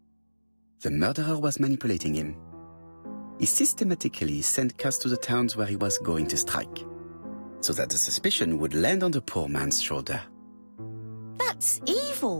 The murderer was manipulating him. He systematically sent Cust to the towns where he was going to strike, so that the suspicion would land on the poor man's shoulder. That's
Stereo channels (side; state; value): both; inverted; correlation -1.00